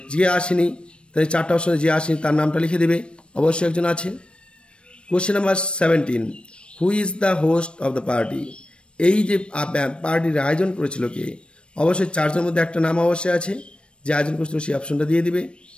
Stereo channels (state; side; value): late; right; 0.057 ms